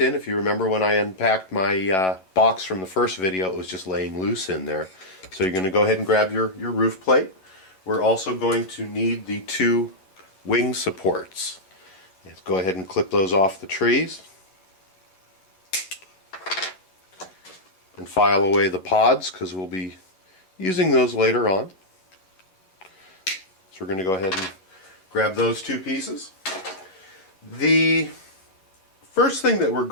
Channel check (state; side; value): late; right; 11 ms